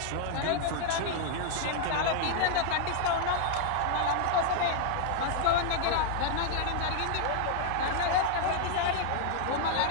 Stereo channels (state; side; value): different; both; correlation 0.00